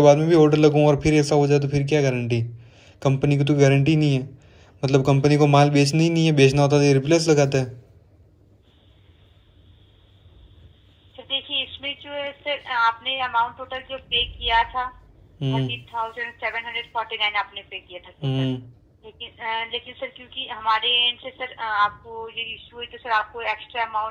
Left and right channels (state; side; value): identical; both; correlation 1.00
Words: बाद में भी ऑर्डर लगूँ और फिर ऐसा हो जाए तो फिर क्या गारंटी। कंपनी की तो गारंटी नहीं है, मतलब कंपनी को माल बेचना ही नहीं है, बेचना होता तो ये रिप्लेस लगाता है। देखिए इसमें जो है सर आपने अमाउंट टोटल जो पे किया था 30,749 आपने पे किया था लेकिन सर क्योंकि हमारे एंड से सर आपको ये इशू हुई तो सर आपको एक्स्ट्रा